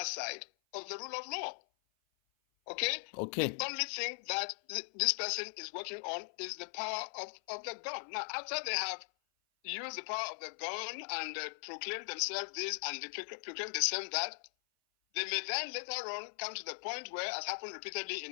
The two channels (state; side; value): silent; right; 52 dB below the other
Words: of the rule of law. Okay? Okay. The only thing that this person is working on is the power of the gun. Now, after they have used the power of the gun and proclaim themselves this and they proclaim themselves that, they may then later on come to the point where, as happened repeatedly